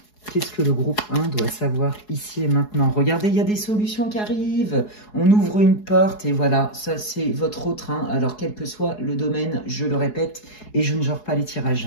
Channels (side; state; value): right; late; 4.7 ms